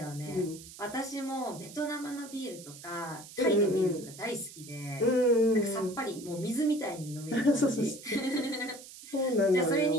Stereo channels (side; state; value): right; noise; hiss, 16 dB below the sound